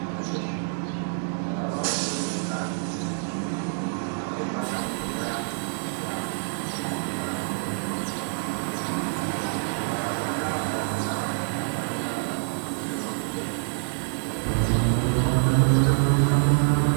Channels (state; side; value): silent; left; digital silence